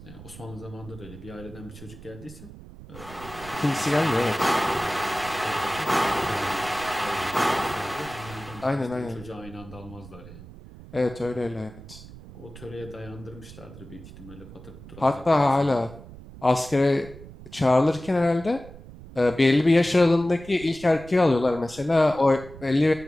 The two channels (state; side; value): noise; right; rumble, 17 dB below the sound